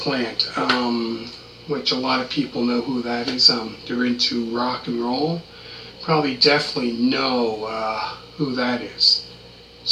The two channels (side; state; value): both; identical; correlation 1.00